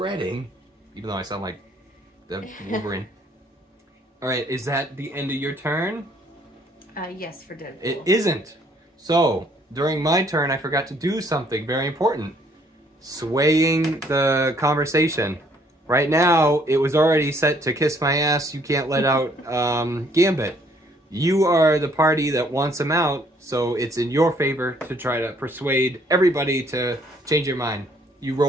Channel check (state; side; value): normal; both; correlation 0.64